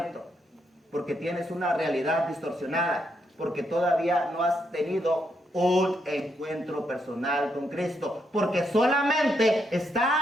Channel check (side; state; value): both; normal; correlation 0.79